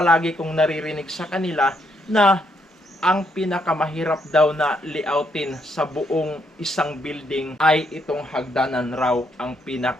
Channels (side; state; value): both; normal; correlation 0.75